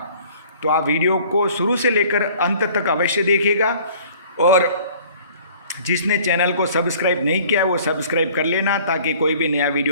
तो आप वीडियो को शुरू से लेकर अंत तक अवश्य देखिएगा, और जिसने चैनल को सब्सक्राइब नहीं किया वो सब्सक्राइब कर लेना, ताकि कोई भी नया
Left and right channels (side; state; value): both; inverted; correlation -0.52